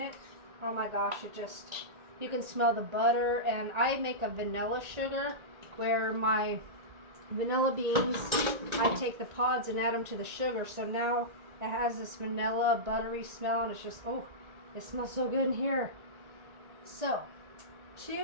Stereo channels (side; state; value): left; late; 1.9 ms